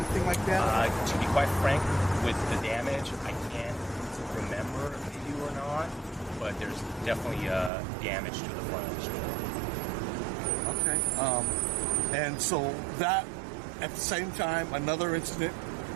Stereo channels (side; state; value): left; drops out; at 7.7 s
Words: like that? To be quite frank, with the damage, I can't remember if they do or not, but there's definitely damage to the front of the store. Okay. And so that, at the same time, another incident